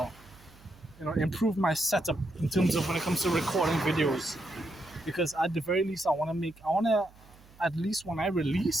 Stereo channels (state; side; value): noise; right; hum, 25 dB below the sound